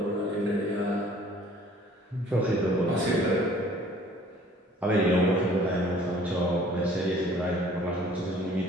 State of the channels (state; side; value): normal; both; correlation 0.53